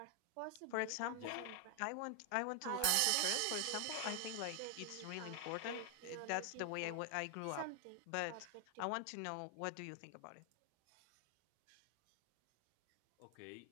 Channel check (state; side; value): different; both; correlation 0.00